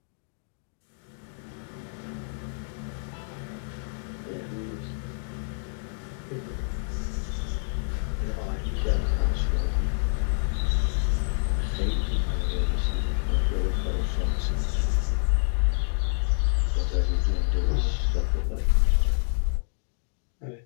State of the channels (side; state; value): right; silent; digital silence